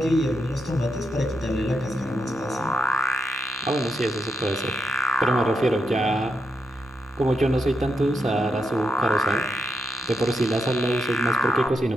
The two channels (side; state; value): both; normal; correlation 0.84